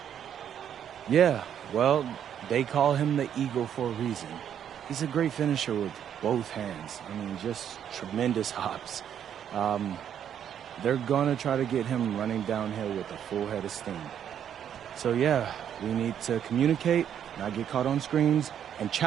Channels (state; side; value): quieter; left; 9.2 dB